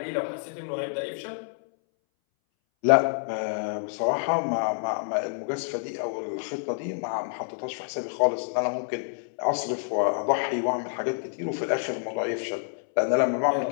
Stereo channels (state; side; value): silent; right; 60 dB below the other